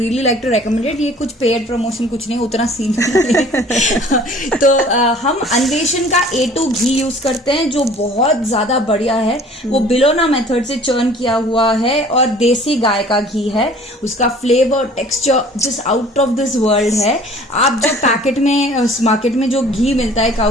like to recommended. ये कुछ पेड प्रमोशन कुछ नहीं, उतना सीन नहीं तो हम अन्वेषण का A2 घी यूज करते हैं जो बहुत ज्यादा बढ़िया है। वो बिलोना मेथड से चर्न किया हुआ है और देसी गाय का घी है। उसका flavour texture just out of this world है। आप जो पैकेट में मार्केट में जो घी मिलता है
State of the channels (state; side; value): normal; both; correlation 0.50